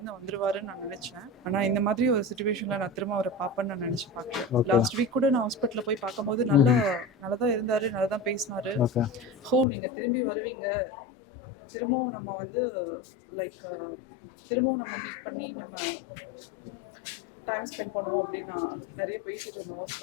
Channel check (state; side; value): drops out; right; at 9.7 s